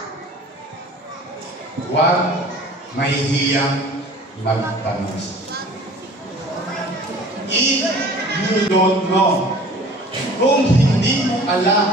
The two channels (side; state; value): both; normal; correlation 0.46